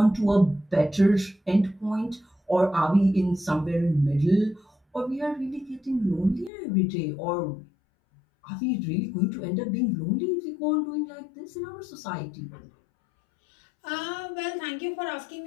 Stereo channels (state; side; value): drops out; right; at 6.5 s